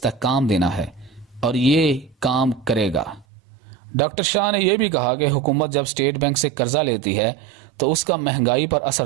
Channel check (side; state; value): left; drops out; at 3.2 s